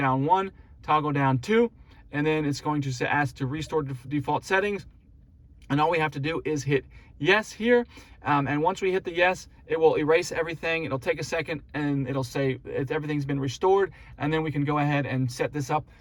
1, toggle down 2, and then it's going to ask to restore default settings. And all we have to do is hit yes here. And once we hit the yes, it will erase everything. It'll take a second and it'll say everything's been restored. And then we can go ahead and set this up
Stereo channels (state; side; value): identical; both; correlation 1.00